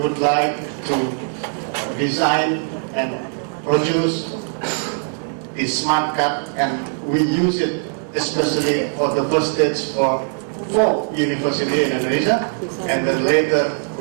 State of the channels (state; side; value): silent; left; 61 dB below the other